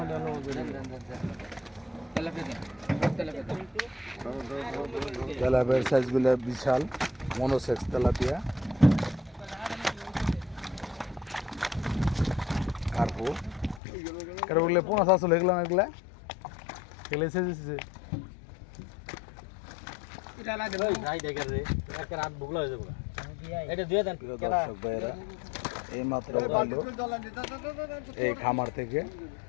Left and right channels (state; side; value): drops out; right; at 13.8 s